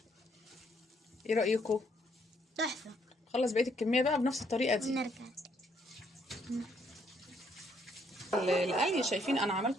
ايه رايكم؟ تحفه. خلص بقيه الكميه بقى بنفس الطريقه دي. ونرجع القلي شايفين انا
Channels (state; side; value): normal; both; correlation 0.70